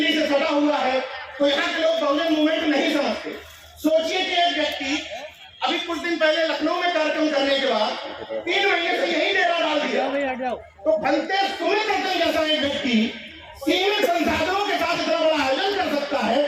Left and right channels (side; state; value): both; identical; correlation 1.00